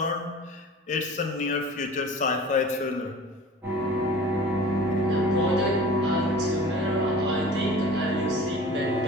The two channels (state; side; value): normal; both; correlation 0.41